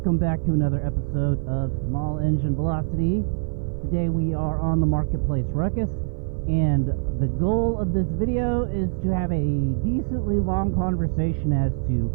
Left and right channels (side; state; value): left; silent; 56 dB below the other